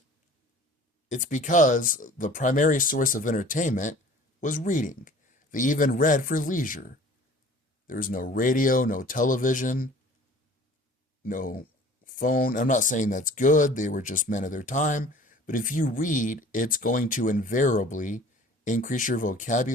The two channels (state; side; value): normal; both; correlation 0.48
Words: It's because the primary source of entertainment was reading. They even read for leisure. There was no radio, no television, no phone. I'm not saying that's good. They were just men of their time. But if you read, it's going to invariably increase your